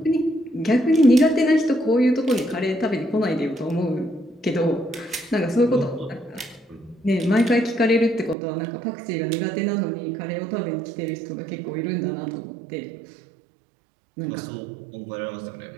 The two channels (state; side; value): drops out; left; at 8.3 s